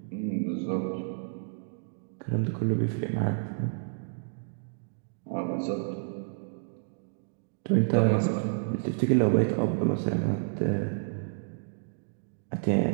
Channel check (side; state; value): left; silent; digital silence